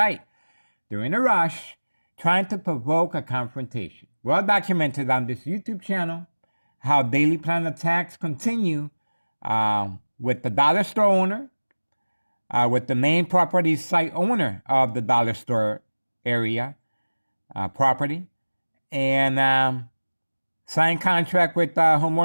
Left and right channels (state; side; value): inverted; both; correlation -1.00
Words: They're in a rush trying to provoke a confrontation. Well documented on this YouTube channel how daily plan attacks continue with the dollar store owner, with the main property site owner of the dollar store area property, and signed contract with